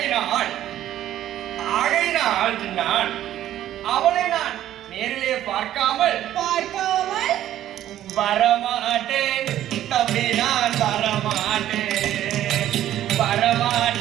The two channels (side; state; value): left; quieter; 12.4 dB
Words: நான் அவளை நான் நேரிலே பார்க்காமல் வரமாட்டேன் தம்பி, நான் வரமாட்டேன்